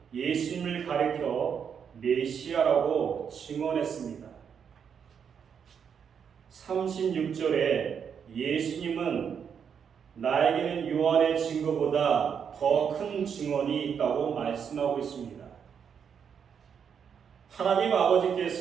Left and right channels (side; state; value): left; quieter; 7.3 dB